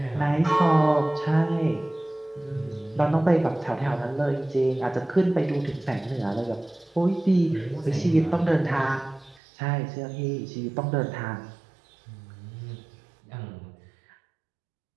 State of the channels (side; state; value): left; drops out; at 9.4 s